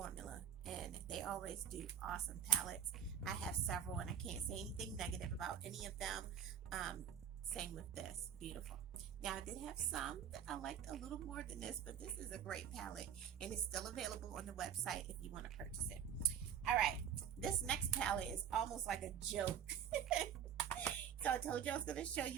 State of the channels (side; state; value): left; quieter; 8.6 dB